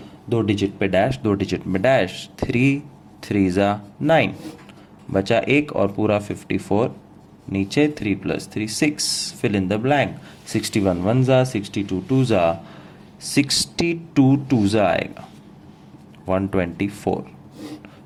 2 डिजिट पे डैश, 2 डिजिट में डैश. 3 3 जा 9, बचा 1 और पूरा 54. नीचे 3 + 3 6. Fill in the blank. 61 1 जा, 62 2 जा, 62 2 जा आएगा 124.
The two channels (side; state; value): both; identical; correlation 1.00